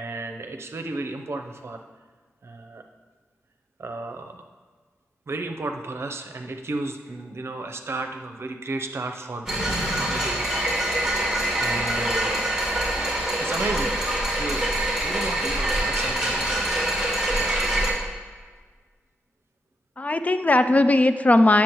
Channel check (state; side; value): normal; both; correlation 0.77